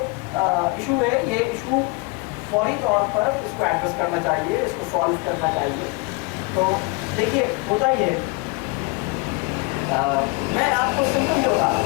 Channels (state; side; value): quieter; right; 26.8 dB